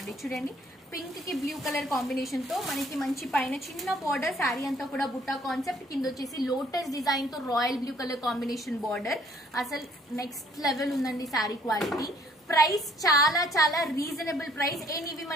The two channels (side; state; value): both; normal; correlation 0.61